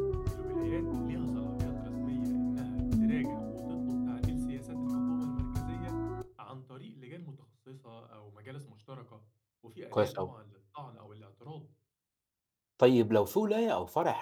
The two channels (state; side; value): identical; both; correlation 1.00